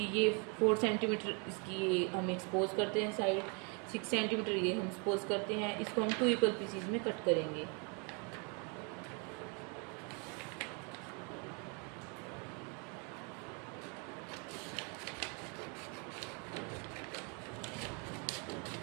ये 4 सेंटीमीटर इसकी ये हम एक्सपोज करते हैं साइड, 6 सेंटीमीटर ये हम एक्सपोज करते हैं। इसको हम टू इक्वल पीसीज में कट करेंगे।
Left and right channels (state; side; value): quieter; left; 34.6 dB